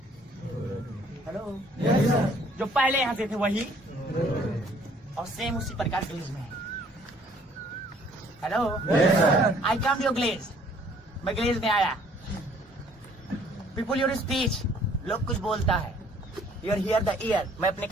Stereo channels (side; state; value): both; normal; correlation 0.59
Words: हेलो जो पहले हंसे थे वही और सेम उसी प्रकार ग्लेज में। Hello I come to your glaze, मैं ग्लेज में आया। पीपुल योर स्पीच, लोग कुछ बोलता है, योर हियर द ईयर, मैं अपने